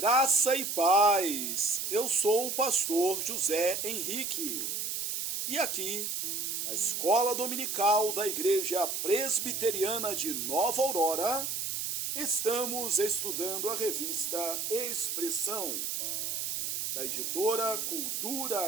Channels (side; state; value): right; noise; hiss, 2 dB below the sound